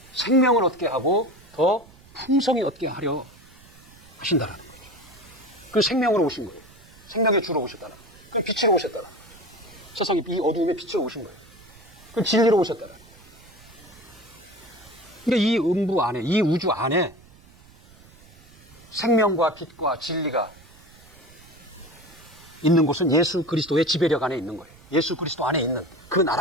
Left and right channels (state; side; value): noise; right; rumble, 24 dB below the sound